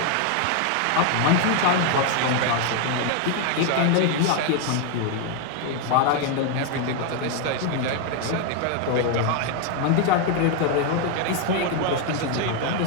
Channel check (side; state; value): both; different; correlation 0.01